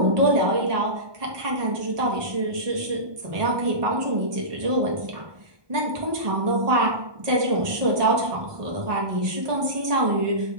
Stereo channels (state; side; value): late; left; 1.2 ms